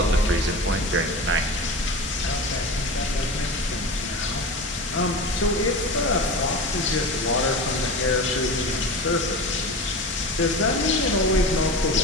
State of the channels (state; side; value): normal; both; correlation 0.29